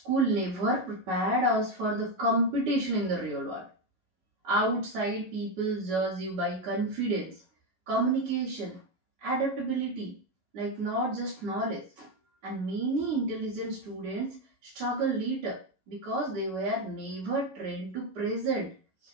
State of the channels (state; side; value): late; left; 11 ms